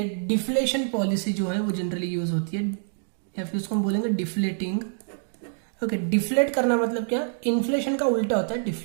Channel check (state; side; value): silent; left; digital silence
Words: डिफ्लेशन पॉलिसी जो है वो जनरली यूज होती है, या फिर उसको हम बोलेंगे डिफ्लेटिंग, ओके। डिफ्लेट करना मतलब क्या, इन्फ्लेशन का उल्टा होता है